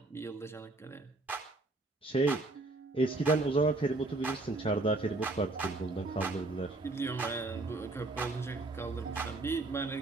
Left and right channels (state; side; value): quieter; left; 3.1 dB